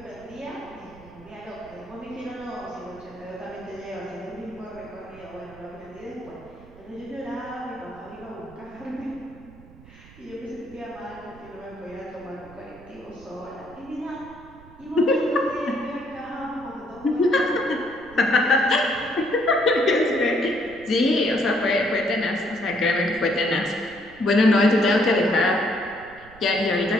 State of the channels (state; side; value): noise; right; rumble, 21 dB below the sound